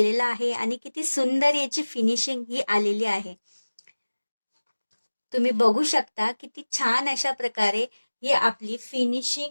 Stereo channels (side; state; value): both; inverted; correlation -1.00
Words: आहे आणि किती सुंदर याची फिनिशिंग ही आलेली आहे. तुम्ही बघू शकता किती छान अशा प्रकारे ही आपली